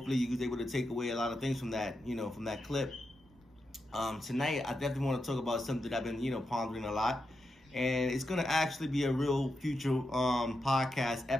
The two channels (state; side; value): normal; both; correlation 0.87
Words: you was able to take away a lot of things from that, from that clip. Tonight, I definitely want to talk about something that I've been, pondering a lot. And it's going to actually be a real future podcast